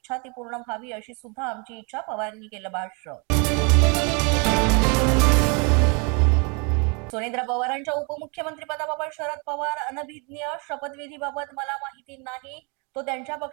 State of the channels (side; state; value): left; quieter; 32.7 dB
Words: ती पूर्ण व्हावी अशी सुद्धा आमची इच्छा पवारांनी केलं भाष्य. सुनेत्रा पवारांच्या उपमुख्यमंत्रीपदाबाबत शरद पवार अनभिज्ञ शपथविधीबाबत मला माहिती नाही, तो त्यांच्या